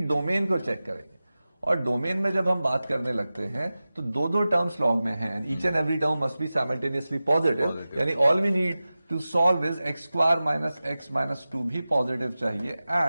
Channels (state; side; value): inverted; both; correlation -0.96